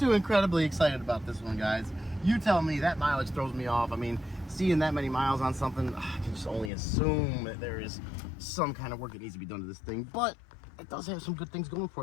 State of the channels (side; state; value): right; drops out; at 6.7 s